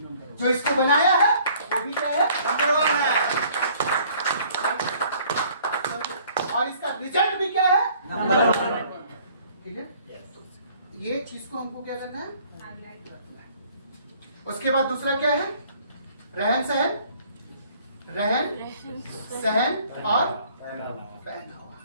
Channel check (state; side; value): inverted; both; correlation -0.57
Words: जो इसको बनाया है वो भी क्या है? नंबर 1 है। और इसका रिजल्ट भी क्या है? नंबर 1। ठीक है, ये चीज को हमको क्या करना है? उसके बाद दूसरा क्या है? रहन सहन और पहनावा।